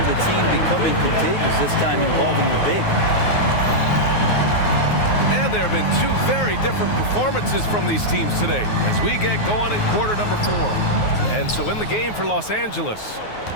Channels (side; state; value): right; late; 9.5 ms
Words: the team becoming contagious, this time involving the big. And there have been 2 very different performances from these teams today as we get going in quarter number 4. And so in the game for Los Angeles,